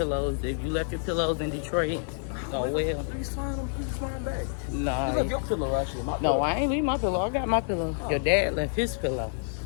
If you left your pillows in Detroit, oh well. Please find back. Nah. You left your pillow, actually. My pillow. No, I ain't leave my pillow. I got my pillow. Your dad left his pillow.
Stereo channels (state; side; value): silent; right; 59 dB below the other